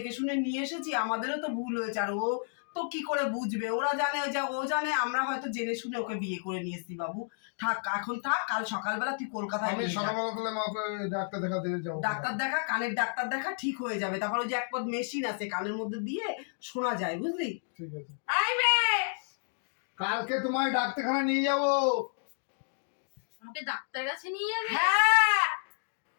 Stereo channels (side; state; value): right; silent; digital silence